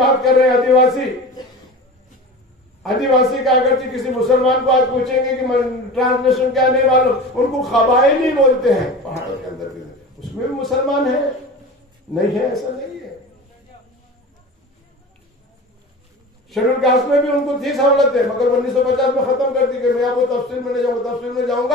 कर रहे हैं, आदिवासी, आदिवासी का अगर किसी मुसलमान को आज पूछेंगे कि ट्रांसलेशन क्या नहीं मालूम, उनको कबायली बोलते हैं। पहाड़ों के अंदर भी उसमें भी मुसलमान है, नहीं है ऐसा नहीं है। शेड्यूल कास्ट में भी उनको थी सहूलतें, मगर 1950 में खत्म कर दी गई। मैं आपको तफसील में नहीं जाऊंगा, तफसील में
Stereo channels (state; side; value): normal; both; correlation 0.34